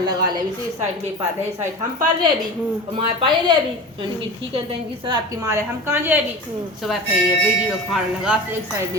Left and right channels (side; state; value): both; normal; correlation 0.32